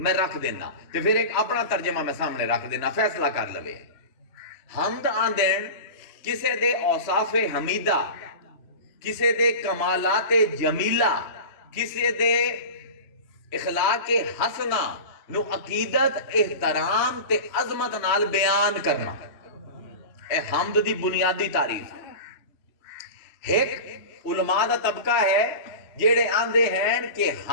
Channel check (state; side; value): late; right; 3.0 ms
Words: رکھ دینا تے پھر ایک اپنا ترجمہ میں سامنے رکھ دینا فیصلہ کر لوے. حمد آندین کسے دے اوصاف حمیدہ, کسے دے کمالات جمیلہ, کسے دے اخلاق حسنہ نو عقیدت احترام تے عظمت نال بیان کرنا. اے حمد دی بنیادی تعریف ہے. ایک علماء دا طبقہ ہے جیڑے آندے ہیں کہ